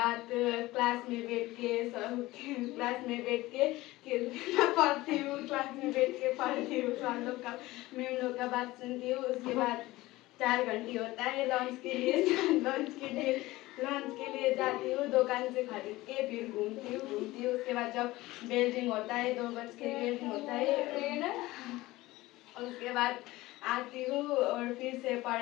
क्लास में बैठ के पढ़ती हूँ, क्लास में बैठ के पढ़ती हूँ, सर लोग का मैम लोग का बात सुनती हूँ. उसके बाद 4 घंटे होता है लंच के लिए जाती हूँ, दुकान से खरीद के फिर घूमती हूँ. उसके बाद जब बेल रिंग होता है 2 बज के बेल रिंग होता है, उसके बाद आती हूँ और फिर से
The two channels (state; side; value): quieter; right; 18.7 dB